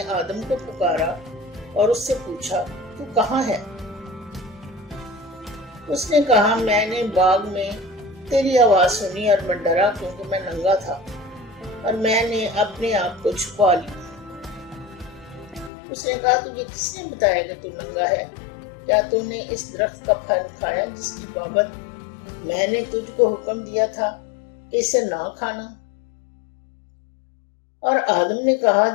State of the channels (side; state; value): right; drops out; at 15.7 s